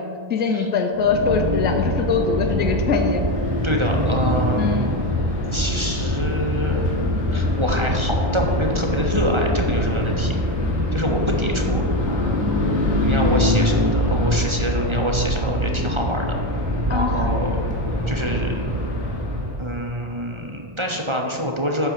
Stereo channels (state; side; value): late; left; 1.4 ms